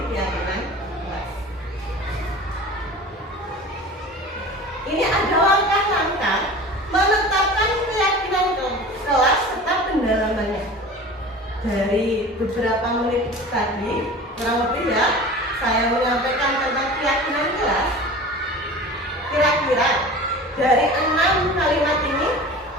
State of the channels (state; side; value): normal; both; correlation 0.38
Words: keyakinan kelas. Ini ada langkah-langkah menetapkan keyakinan kelas serta pendalaman beberapa menit tadi, kurang lebih ya, saya menyampaikan tentang keyakinan kelas. Kira-kira dari 6 kalimat ini,